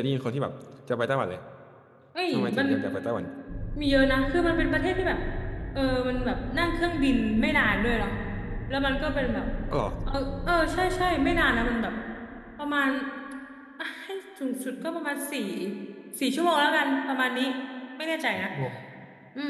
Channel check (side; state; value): both; identical; correlation 1.00